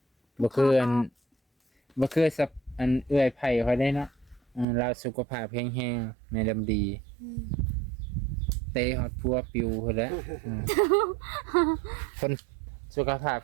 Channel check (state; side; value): drops out; left; at 4.7 s